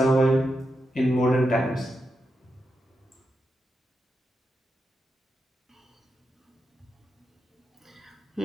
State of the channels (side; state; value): both; normal; correlation 0.86